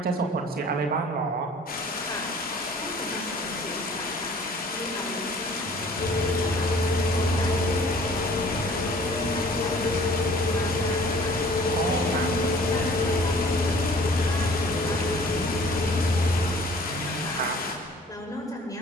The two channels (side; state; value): both; normal; correlation 0.51